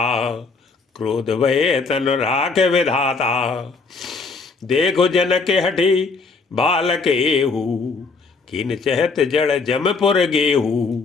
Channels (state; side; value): quieter; right; 4.3 dB